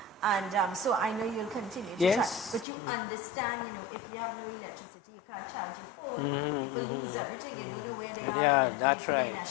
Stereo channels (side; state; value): right; drops out; at 2.7 s